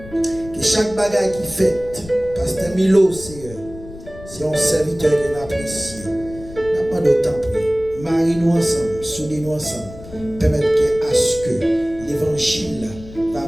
Que chaque bagaille qui fait, pasteur Milo, Seigneur, c'est un serviteur qui l'a apprécié. N'a pas d'autant prier. Marie-nous ensemble, soudez-nous ensemble, permettre à ce que l'évangile va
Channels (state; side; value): noise; left; rumble, 16 dB below the sound